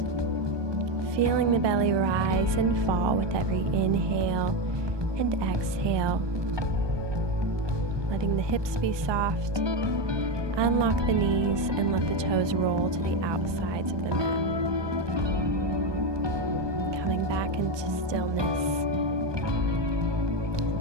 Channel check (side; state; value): left; late; 1.2 ms